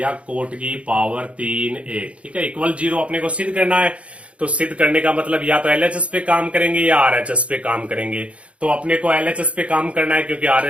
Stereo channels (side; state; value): left; late; 0.062 ms